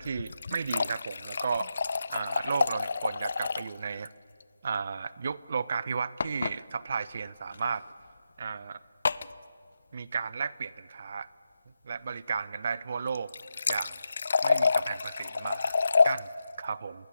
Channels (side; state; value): both; inverted; correlation -0.86